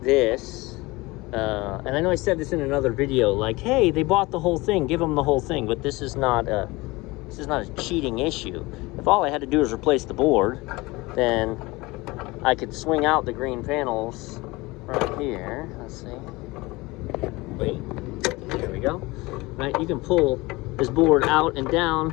this. And I know I said this in another video, like, hey, they bought the whole thing, give them the whole thing. But this is not a cheating issue. If all I had to do is replace the board, then I could swing out the green panels right here. Let's see. Wait, there we go. Right, you can pull this board out and down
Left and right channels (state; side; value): quieter; right; 22.2 dB